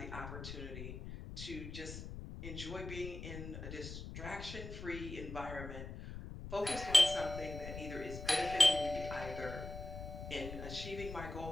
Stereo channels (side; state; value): left; noise; rumble, 9 dB below the sound